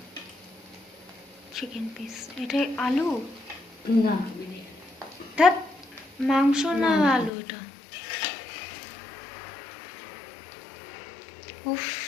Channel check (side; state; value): right; drops out; at 7.3 s